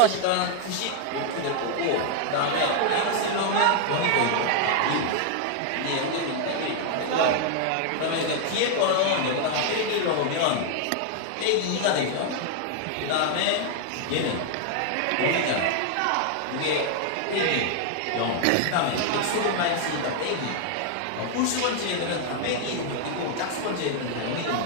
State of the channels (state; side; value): different; both; correlation 0.00